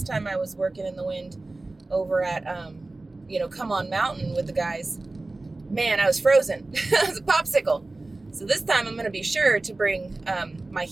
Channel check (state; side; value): quieter; left; 3.1 dB